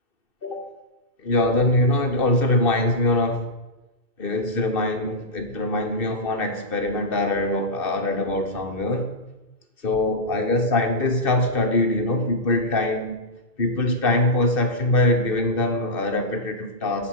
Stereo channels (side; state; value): right; late; 2.6 ms